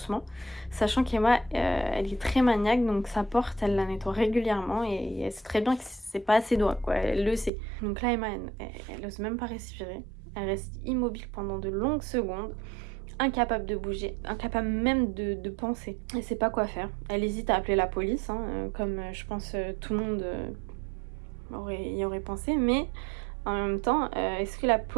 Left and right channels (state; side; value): drops out; left; at 7.5 s